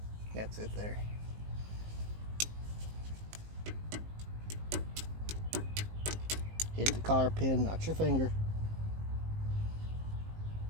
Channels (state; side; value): late; left; 19 ms